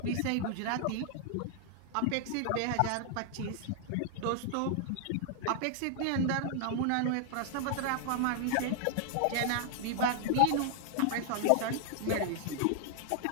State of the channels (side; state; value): both; different; correlation -0.01